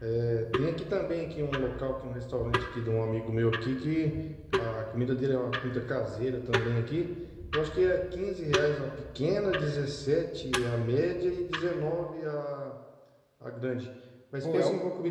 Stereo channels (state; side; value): identical; both; correlation 1.00